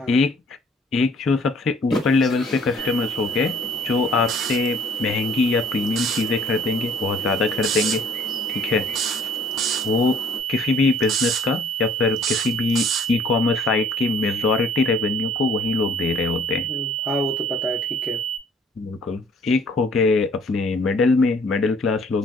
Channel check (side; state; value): both; normal; correlation 0.57